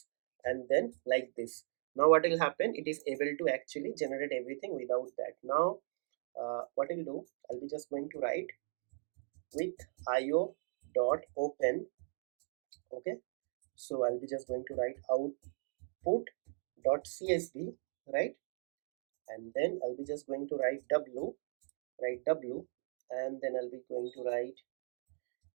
and then like this. Now what will happen, it is able to actually generate everything without that. Now what I'll do, I'll be just going to write with io dot open, okay. So I'll be just going to write output dot csv, right, and then I'll be just going to write w, and then I'll be going to write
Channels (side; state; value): left; silent; digital silence